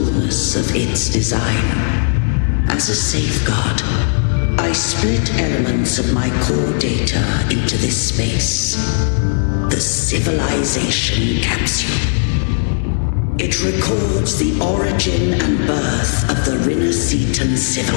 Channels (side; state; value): right; silent; digital silence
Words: of its design. As a safeguard, I split elements of my core data into this space, the civilization capsule. It records the origin and birth of the Renacitan